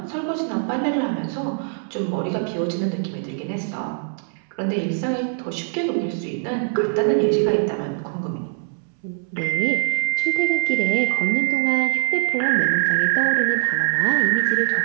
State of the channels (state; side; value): silent; left; 64 dB below the other